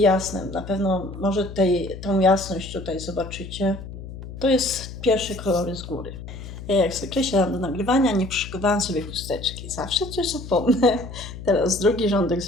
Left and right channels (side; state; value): left; noise; hum, 11 dB below the sound